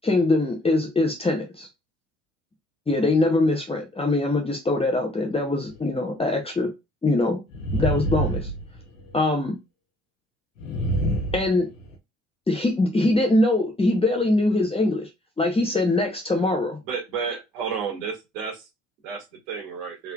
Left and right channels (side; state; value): both; normal; correlation 0.63